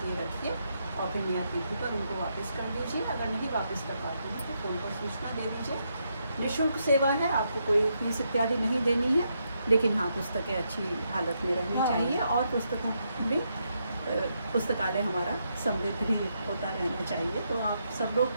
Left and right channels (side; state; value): both; inverted; correlation -0.80